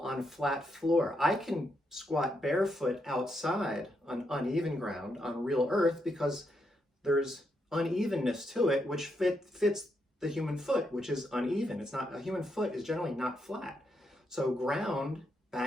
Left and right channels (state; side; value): normal; both; correlation 0.80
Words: flat floor. I can squat barefoot outside on uneven ground, on real earth, because there's unevenness to it, which fits the human foot, which is uneven. A human foot is generally not flat. So ground,